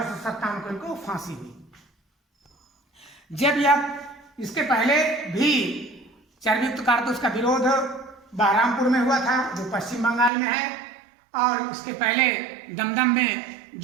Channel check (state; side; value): drops out; left; at 10.3 s